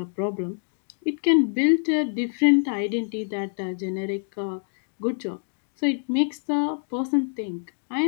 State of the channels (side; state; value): right; silent; digital silence